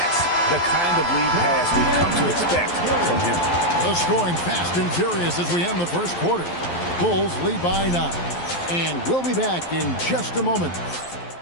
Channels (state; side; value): late; right; 11 ms